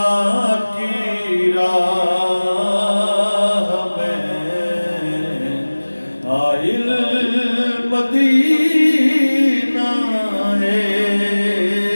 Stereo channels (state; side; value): inverted; both; correlation -1.00